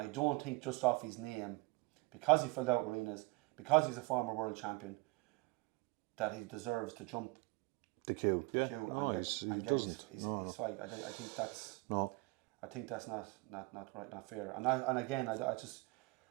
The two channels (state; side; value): quieter; left; 24.9 dB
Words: don't think just off his name, because he filled out arenas, because he's a former world champion, that he deserves to jump the queue and get his fight. I think that's I think that's not right, not fair. And again, I